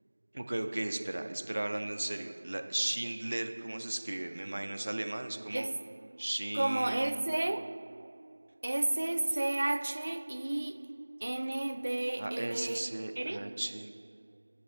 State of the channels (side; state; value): both; inverted; correlation -1.00